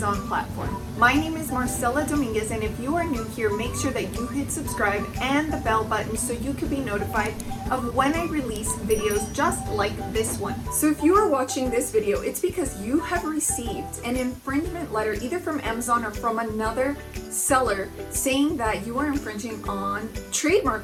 platform. My name is Marcella Dominguez, and if you are new here, make sure that you hit subscribe and the bell button so you can be notified of when I release videos just like this one. So if you are watching this video, it's because you have received an infringement letter either from Amazon or from another seller saying that you are infringing on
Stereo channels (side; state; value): both; identical; correlation 1.00